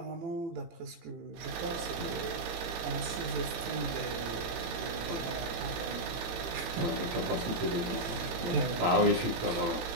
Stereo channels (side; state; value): left; late; 18 ms